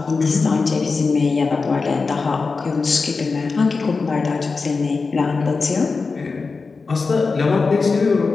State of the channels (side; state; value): right; quieter; 4.4 dB